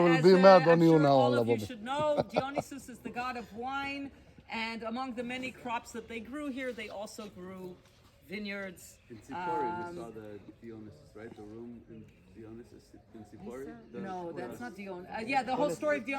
be mad on I'm you sure now, all of you Baba. should know. Dionysus is the god of wine, and among the many crops that they grew here, they also grew vineyards. In Sipori, we saw the Dionysus, right? The room in Dionysus in Sipori. No, that's not Dionysus. Yeah, the whole story of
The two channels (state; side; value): identical; both; correlation 1.00